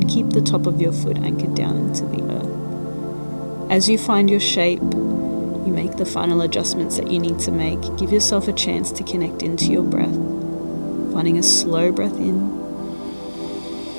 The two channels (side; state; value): both; inverted; correlation -1.00